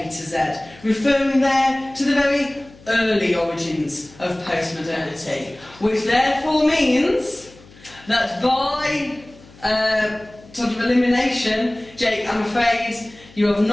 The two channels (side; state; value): left; noise; hum, 24 dB below the sound